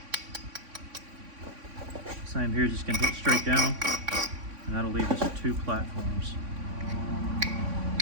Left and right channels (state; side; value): late; left; 3.5 ms